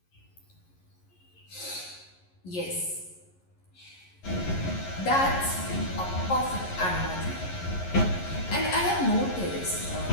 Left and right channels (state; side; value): late; right; 11 ms